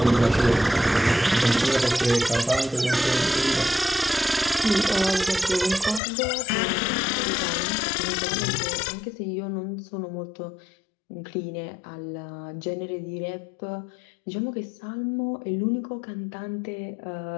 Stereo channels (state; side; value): drops out; right; at 6.0 s